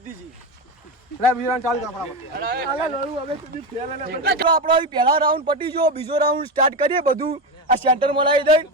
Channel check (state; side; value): normal; both; correlation 0.16